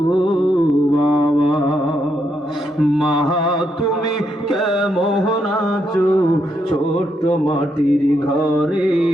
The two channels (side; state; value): both; normal; correlation 0.79